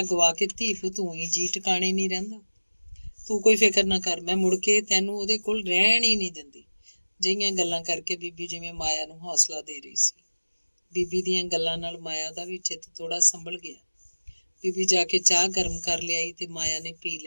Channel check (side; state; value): both; inverted; correlation -1.00